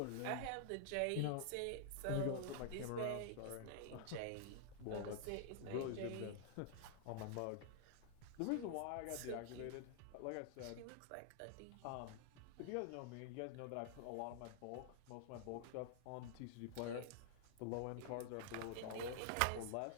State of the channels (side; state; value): both; different; correlation -0.01